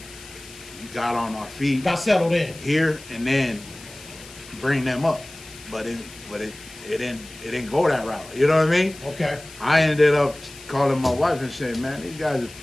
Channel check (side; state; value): left; noise; hiss, 18 dB below the sound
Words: got on our feet. Got settled in. Here, and then bring them up. But it didn't go that route. You know what I mean? Okay. I ended up calling my wife and saying, man, these guys are